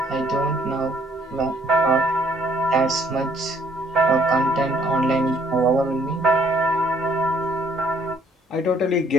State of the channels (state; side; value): normal; both; correlation 0.64